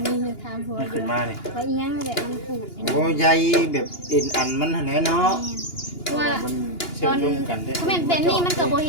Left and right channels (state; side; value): late; right; 2.9 ms